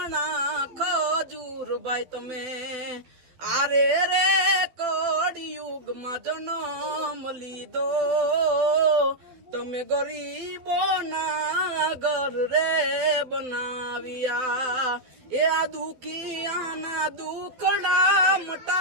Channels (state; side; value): late; left; 12 ms